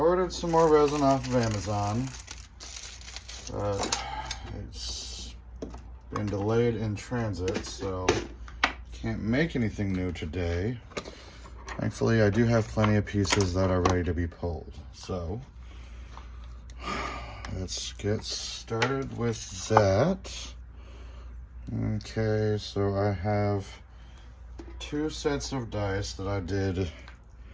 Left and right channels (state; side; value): identical; both; correlation 1.00